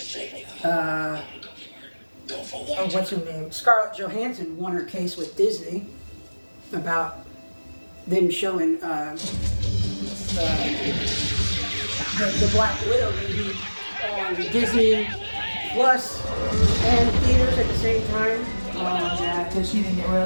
Go for what? Oh, what's her name? Scarlett Johansson won her case with Disney about them showing the Black Widow movie on Disney Plus and theaters at the same time. Oh, yeah, because she didn't get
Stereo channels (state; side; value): inverted; both; correlation -1.00